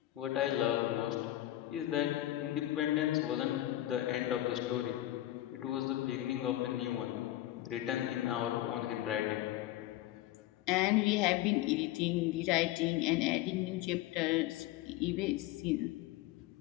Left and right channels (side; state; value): right; quieter; 14.9 dB